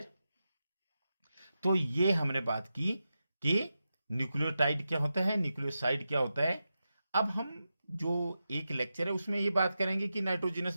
तो ये हमने बात की कि न्यूक्लियोटाइड क्या होता है, न्यूक्लियोसाइड क्या होता है। अब हम जो एक लेक्चर है उसमें ये बात करेंगे कि नाइट्रोजनस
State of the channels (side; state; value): both; inverted; correlation -0.90